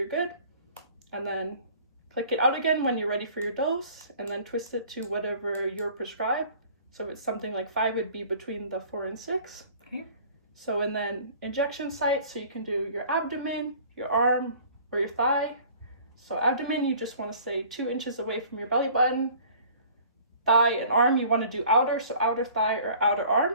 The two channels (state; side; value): inverted; both; correlation -0.50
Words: good. And then click it out again when you're ready for your dose, and then twist it to whatever you're prescribed. So if it's something like 5, it'd be between the 4 and 6. Okay. So and then injection sites, so you can do your abdomen, your arm, or your thigh. So abdomen, you just want to stay 2 inches away from your belly button. Thigh and arm, you want to do outer, so outer thigh or outer arm.